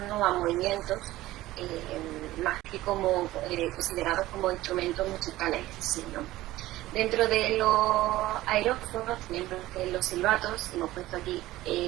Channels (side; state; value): left; quieter; 16.5 dB